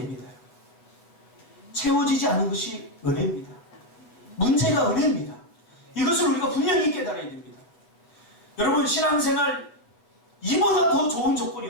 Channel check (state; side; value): late; right; 8.3 ms